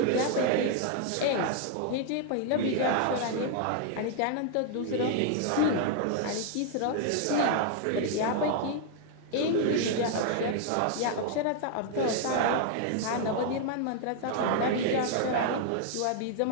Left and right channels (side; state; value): both; different; correlation 0.00